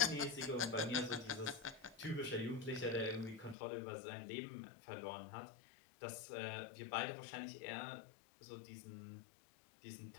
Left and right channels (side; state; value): right; drops out; at 3.6 s